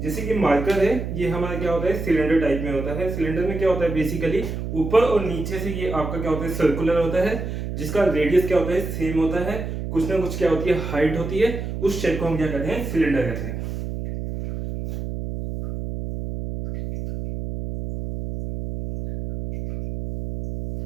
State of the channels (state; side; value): noise; right; hum, 5 dB below the sound